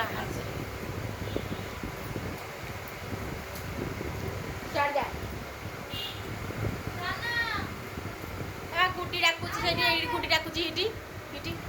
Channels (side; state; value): both; identical; correlation 1.00